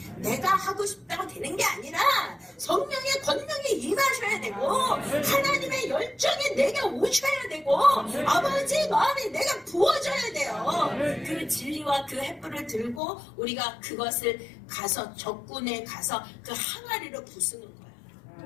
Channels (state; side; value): drops out; right; at 13.0 s